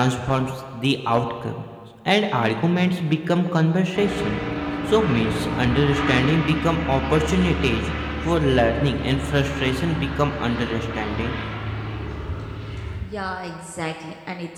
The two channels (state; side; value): identical; both; correlation 1.00